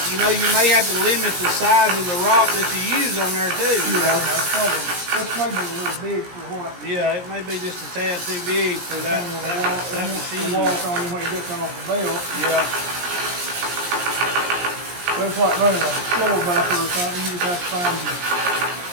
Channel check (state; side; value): late; left; 17 ms